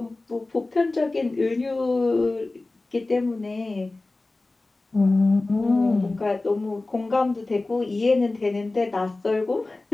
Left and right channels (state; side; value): quieter; right; 3.1 dB